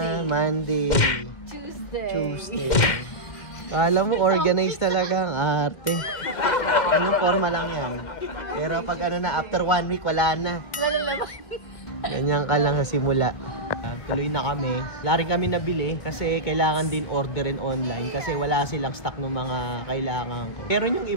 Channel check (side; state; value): right; late; 2.1 ms